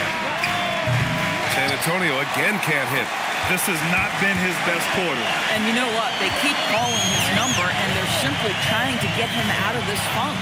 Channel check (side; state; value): both; identical; correlation 1.00